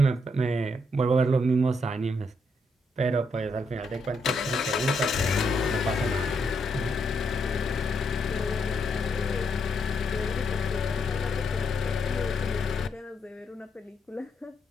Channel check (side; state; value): both; normal; correlation 0.77